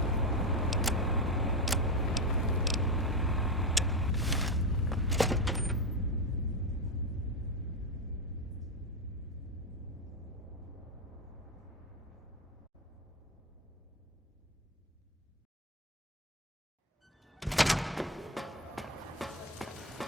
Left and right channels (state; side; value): normal; both; correlation 0.11